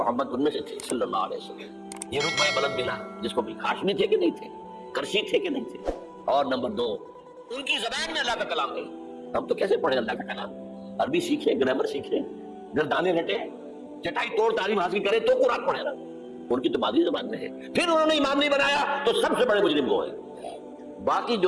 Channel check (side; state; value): both; identical; correlation 1.00